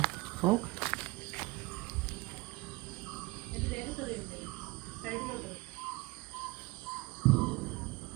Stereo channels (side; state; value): left; quieter; 22.9 dB